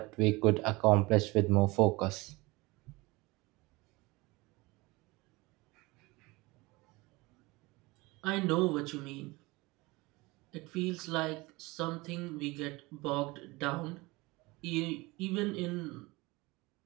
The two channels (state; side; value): quieter; left; 22.9 dB